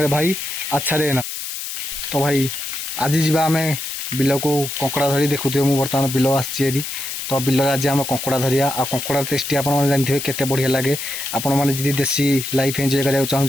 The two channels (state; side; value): noise; left; hiss, 6 dB below the sound